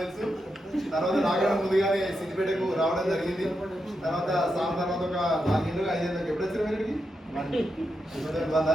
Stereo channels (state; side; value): normal; both; correlation 0.85